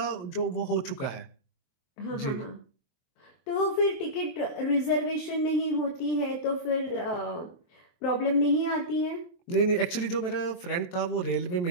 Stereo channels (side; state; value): right; late; 22 ms